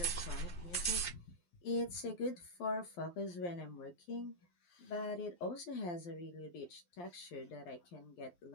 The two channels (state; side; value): late; right; 12 ms